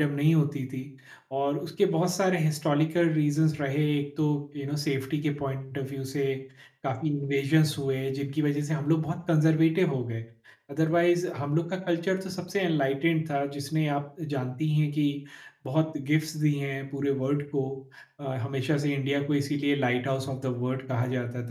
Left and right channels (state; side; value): identical; both; correlation 1.00